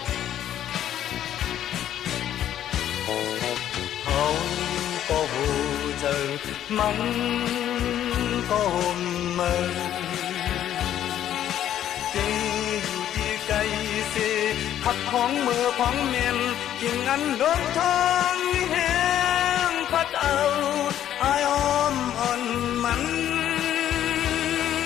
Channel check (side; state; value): right; quieter; 11.2 dB